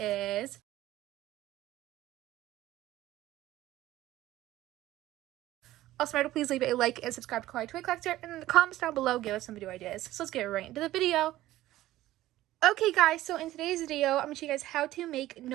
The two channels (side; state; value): left; quieter; 15.3 dB